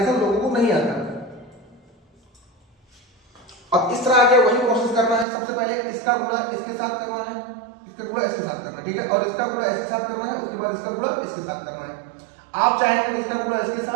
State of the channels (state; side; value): drops out; left; at 5.2 s